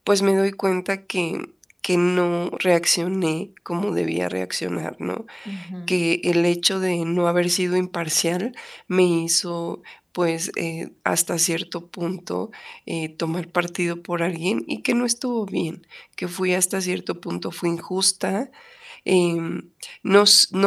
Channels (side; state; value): both; identical; correlation 1.00